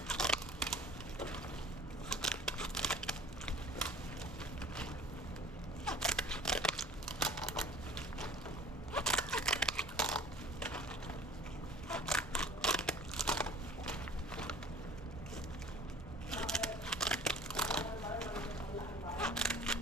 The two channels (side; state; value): both; normal; correlation 0.46